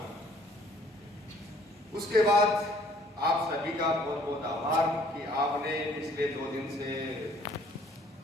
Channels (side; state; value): both; normal; correlation 0.59